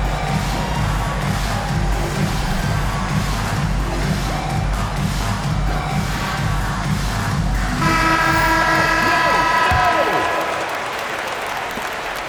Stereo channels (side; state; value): both; identical; correlation 1.00